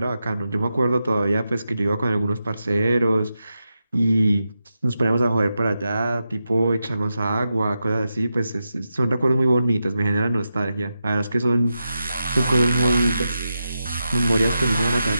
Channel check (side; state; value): both; inverted; correlation -0.89